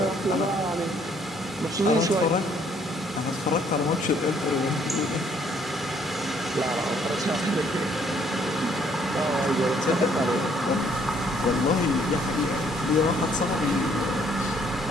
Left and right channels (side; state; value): both; normal; correlation 0.65